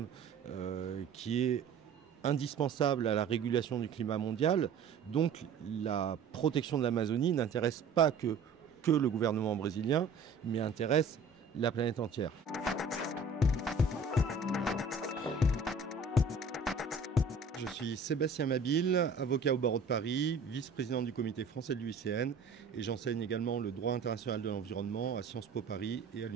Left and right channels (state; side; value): quieter; left; 4.6 dB